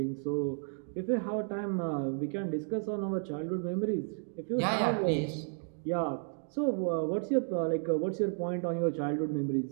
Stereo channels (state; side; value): silent; left; 56 dB below the other